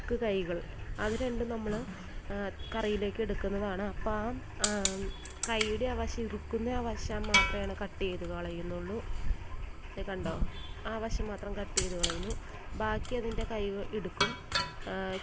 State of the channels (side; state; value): both; identical; correlation 1.00